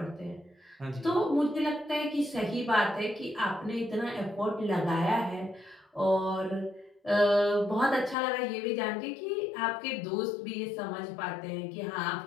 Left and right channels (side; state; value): right; drops out; at 8.2 s